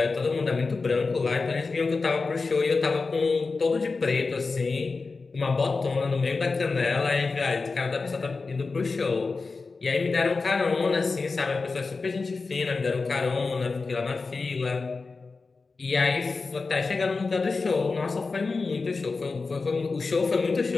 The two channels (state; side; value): quieter; right; 4.1 dB